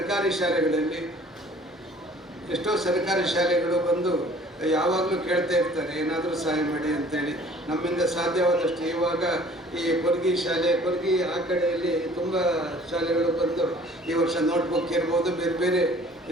ಶಾಲೆಗಳಲ್ಲಿ ಎಷ್ಟೋ ಸರ್ಕಾರಿ ಶಾಲೆಗಳು ಬಂದು ಯಾವಾಗಲೂ ಕೇಳ್ತಾ ಇರ್ತಾರೆ ಏನಾದರೂ ಸಹಾಯ ಮಾಡಿ ಅಂತೇಳಿ. ನಮ್ಮಿಂದ ಸಾಧ್ಯವಾದಷ್ಟು ಇವಾಗ ಈ ಕೊರ್ಗಿ ಆ ಕಡೆಯಲ್ಲಿ ತುಂಬ ಶಾಲೆಗಳು ಬಂದು ಈ ವರ್ಷ ನೋಟ್ಬುಕ್ ಇರ್ಬೋದು, ಬೇರೆ ಬೇರೆ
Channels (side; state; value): both; normal; correlation 0.52